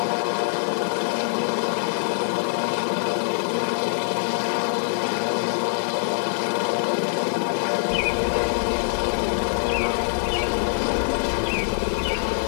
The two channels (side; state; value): right; silent; digital silence